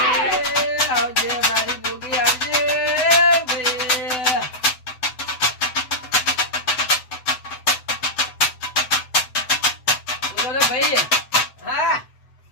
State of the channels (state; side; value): late; right; 7.9 ms